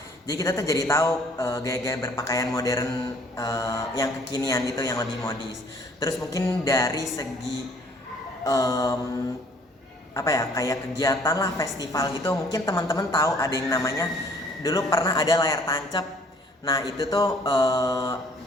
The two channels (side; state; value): both; normal; correlation 0.58